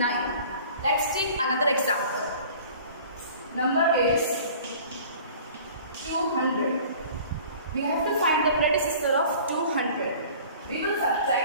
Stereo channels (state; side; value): inverted; both; correlation -0.46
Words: Let's take another example. Number is 200. we have to find the predecessor of 200. We will